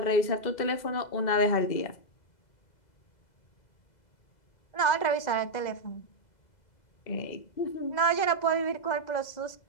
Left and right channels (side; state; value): right; late; 2.0 ms